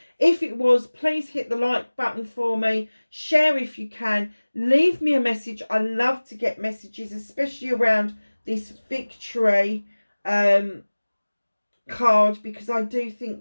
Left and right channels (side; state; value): both; inverted; correlation -1.00